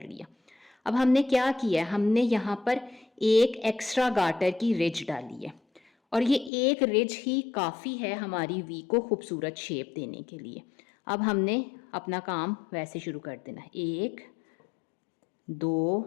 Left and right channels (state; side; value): drops out; right; at 6.5 s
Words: लिया। अब हमने क्या किया है, हमने यहाँ पर एक एक्स्ट्रा गार्टर की रिज डाली है, और ये एक रिज ही काफ़ी है हमारी वी को खूबसूरत शेप देने के लिए। अब हमने अपना काम वैसे शुरू कर देना है। 1 2